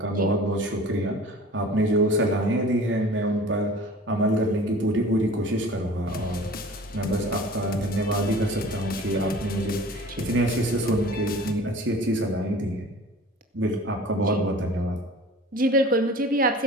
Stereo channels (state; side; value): normal; both; correlation 0.43